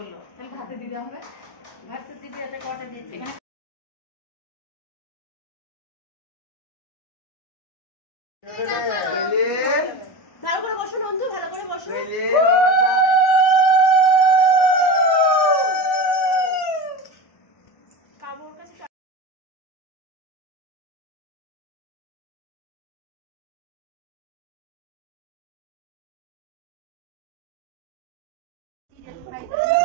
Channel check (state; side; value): late; right; 1.0 ms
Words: তাহলে ভাতে দিতে হবে। ভাত তো দিদি এটা কটা দিয়েছে এখানে। ভালো করে বসো নন্দু, ভালো করে বসো।